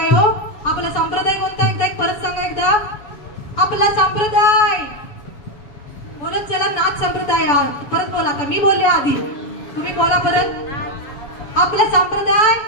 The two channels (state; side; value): late; right; 6.9 ms